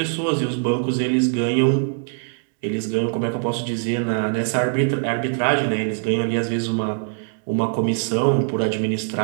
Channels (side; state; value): left; silent; digital silence